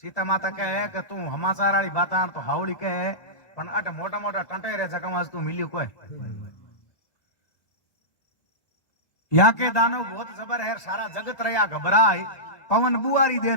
सीता माता कहे कि तू हमाचार वाली बात तो हावड़ी कहे पण अट मोटा मोटा टंटे रे जगह तू मिलियो कोई यहाँ के दानव बहुत जबर है सारा जगत रहा घबराए पवन बुआरी दे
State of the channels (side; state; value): right; late; 1.6 ms